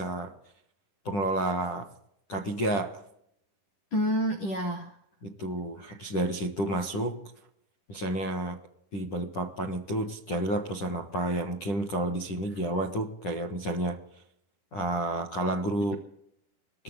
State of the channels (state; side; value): late; right; 10 ms